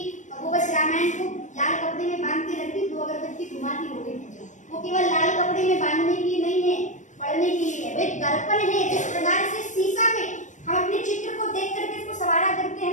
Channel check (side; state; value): right; late; 0.35 ms